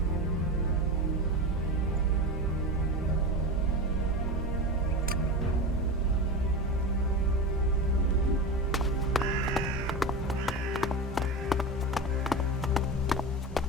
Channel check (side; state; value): both; normal; correlation 0.24